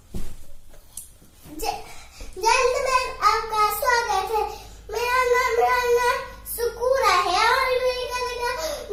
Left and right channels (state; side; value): identical; both; correlation 1.00